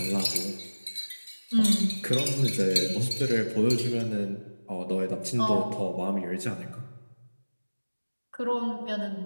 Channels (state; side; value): inverted; both; correlation -1.00